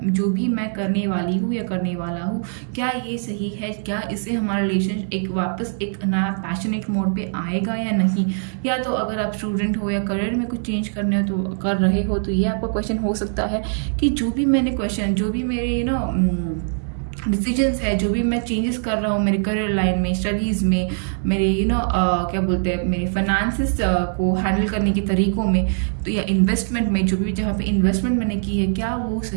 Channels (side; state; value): left; silent; digital silence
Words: भी मैं करने वाली हूँ या करने वाला हूँ, क्या ये सही है, क्या इससे हमारा रिलेशन वापस एक नया पैशनेट मोड पे आएगा या नहीं। या तो अगर आप स्टूडेंट हो या करियर में कुछ चेंज करने हो तो कर रहे हो, तो ये आपका क्वेश्चन हो सकता है कि जो भी मैंने क्वेश्चन, जो भी मेरे डिसीजंस है, जो भी मैं चेंजेस कर रहा हूँ मेरे करियर लाइन में, स्टडीज़ में, मेरे क्या बोलते हैं, मेरे फाइनेंसेस को हैंडल करने के तरीकों में, तो या इन्वेस्टमेंट में, जो भी जहाँ पे इन्वेस्टमेंट मैंने की है, क्या वो